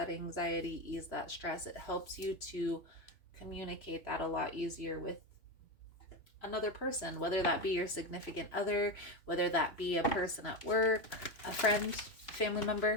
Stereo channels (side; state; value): right; late; 3.0 ms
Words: anxiety, ease that stress. It helps you to communicate that a lot easier with another person, whether that be your significant other, whether that be a person at work, a friend, family member.